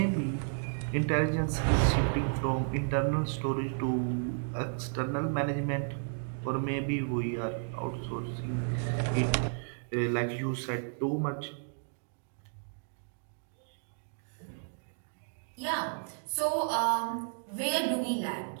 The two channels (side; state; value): left; silent; digital silence